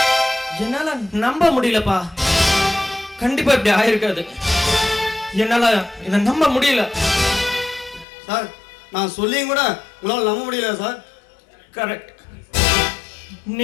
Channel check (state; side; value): drops out; right; at 8.1 s